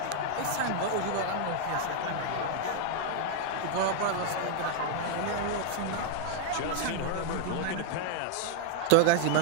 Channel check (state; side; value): different; both; correlation 0.00